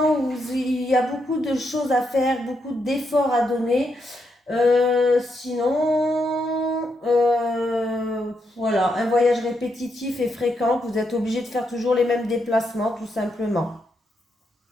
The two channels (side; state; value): both; normal; correlation 0.81